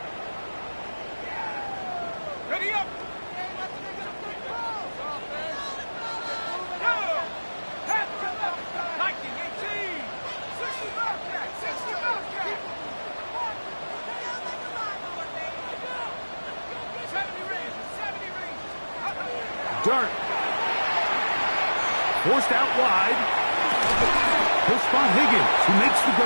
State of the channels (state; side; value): inverted; both; correlation -1.00